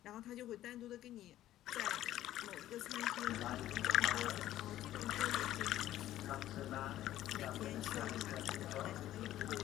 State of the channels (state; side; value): quieter; right; 13.5 dB